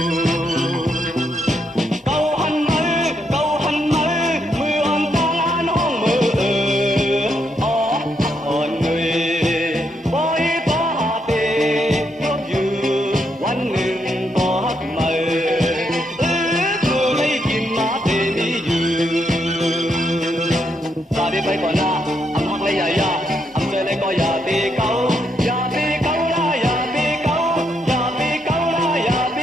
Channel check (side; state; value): both; normal; correlation 0.78